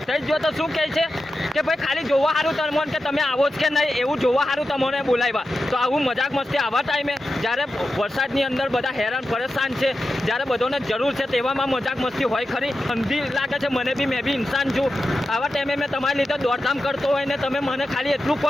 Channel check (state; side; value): normal; both; correlation 0.91